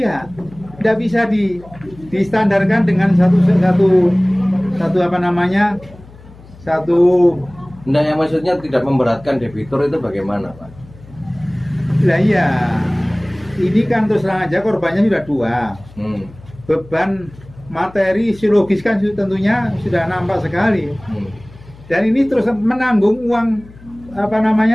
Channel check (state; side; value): noise; left; hum, 22 dB below the sound